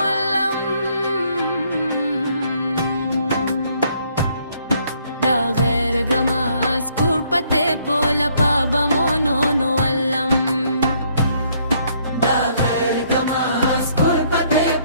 دا غير جماز كوربتي بولا بابا منولم دا غير جماز كوربتي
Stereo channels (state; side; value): inverted; both; correlation -0.67